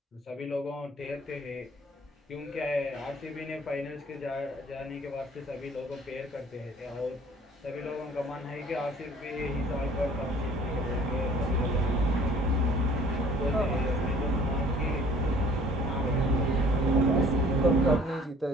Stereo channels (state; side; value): normal; both; correlation 0.53